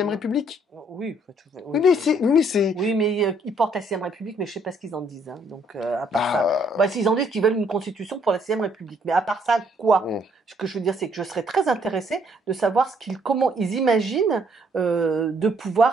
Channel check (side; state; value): both; normal; correlation 0.67